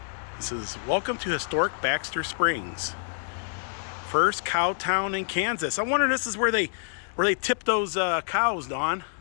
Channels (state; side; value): silent; right; digital silence